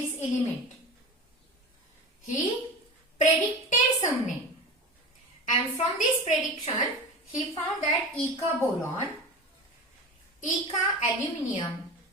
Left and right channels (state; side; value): normal; both; correlation 0.31